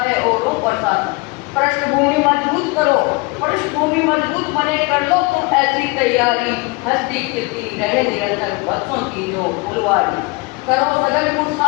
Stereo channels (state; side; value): quieter; right; 26.6 dB